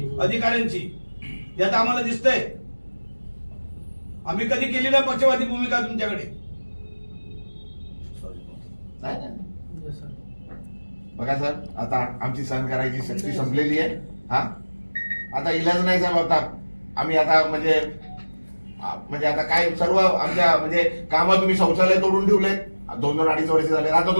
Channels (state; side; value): inverted; both; correlation -1.00